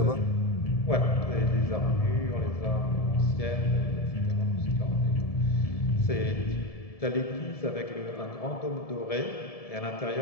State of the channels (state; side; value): late; right; 1.7 ms